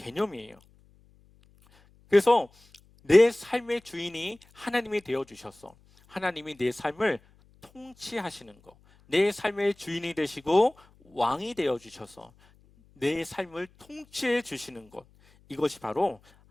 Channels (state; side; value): noise; left; hum, 30 dB below the sound